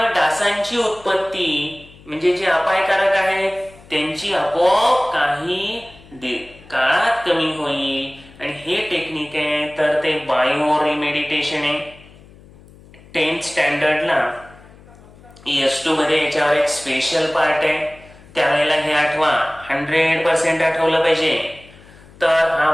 डासांची उत्पत्ती, म्हणजे जे अपायकारक आहेत त्यांची आपोआप काही काळात कमी होईल. आणि हे टेक्निक आहे तर ते बायो रिमेडिटेशन आहे. 10th स्टँडर्डला ES2 मध्ये याच्यावर एक स्पेशल पार्ट आहे. त्यावेळेला हे आठवा, 100% आठवलं पाहिजे. तर हा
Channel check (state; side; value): noise; left; hum, 23 dB below the sound